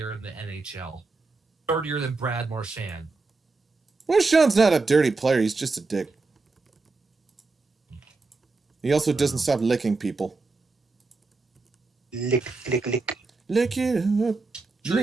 in the NHL. Dirtier than Brad Marchand. Marchand's not a dirty player. He's just a dick. He also doesn't stop licking people. Lick. Lick it up.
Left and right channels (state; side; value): quieter; left; 3.8 dB